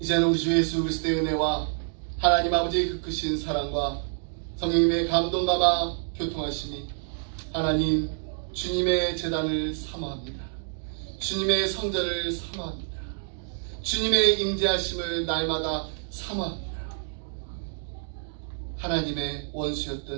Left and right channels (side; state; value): left; silent; digital silence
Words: 이제는 우리 주 예수 그리스도의 은혜와 하나님 아버지의 그 크신 사랑과 성령님의 감동감화 교통하심이 하나님 주님의 제단을 사모합니다. 주님의 성전을 사모합니다. 주님의 임재하심을 날마다 사모합니다. 하나님의